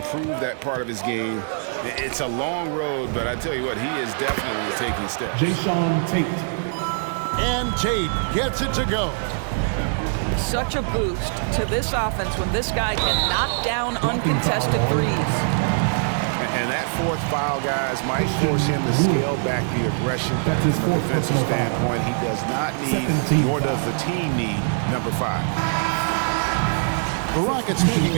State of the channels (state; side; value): silent; left; digital silence